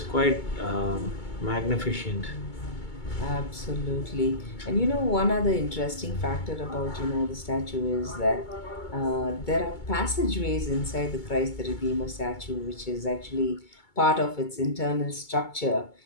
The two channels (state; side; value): late; right; 2.2 ms